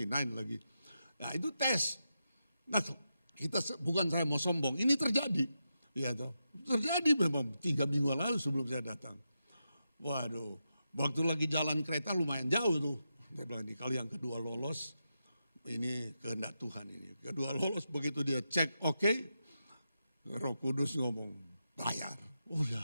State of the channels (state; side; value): inverted; both; correlation -0.87